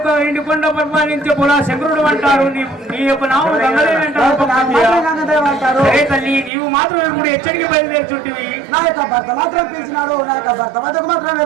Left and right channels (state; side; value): drops out; left; at 6.5 s